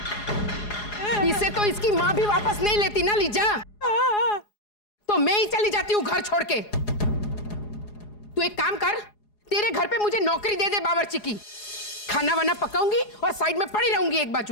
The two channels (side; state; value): right; late; 4.8 ms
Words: इसे तो इसकी माँ भी वापस नहीं लेती ना लीजा, तो मैं ही चली जाती हूँ घर छोड़ के। तू एक काम कर, तेरे घर पे मुझे नौकरी दे दे बावर्ची की, खाना वाना पकाऊंगी और साइड में पड़ी रहूंगी एक